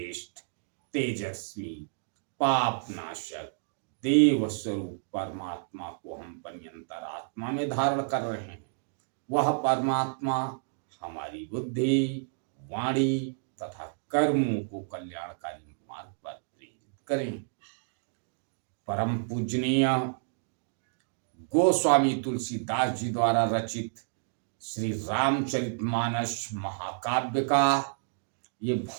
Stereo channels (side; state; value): left; silent; digital silence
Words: तेजस्वी, पाप नाशक, देव स्वरूप परमात्मा को हम पर्यंतर आत्मा में धारण कर रहे हैं। वह परमात्मा हमारी बुद्धि, वाणी तथा कर्मों को कल्याणकारी मार्ग पर प्रेरित करें। परम पूजनीय गोस्वामी तुलसीदास जी द्वारा रचित श्री रामचरितमानस महाकाव्य का ये